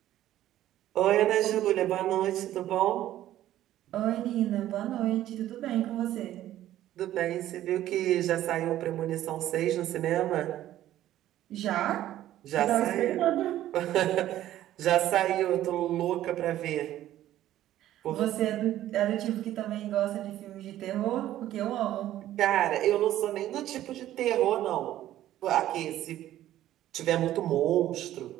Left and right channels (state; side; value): quieter; left; 13.2 dB